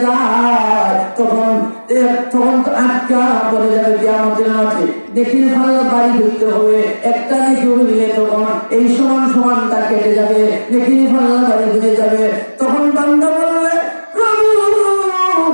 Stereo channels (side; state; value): both; inverted; correlation -1.00